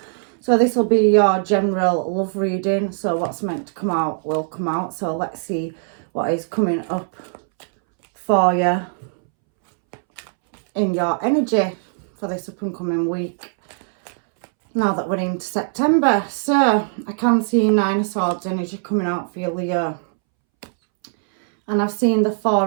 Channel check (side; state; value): left; silent; 65 dB below the other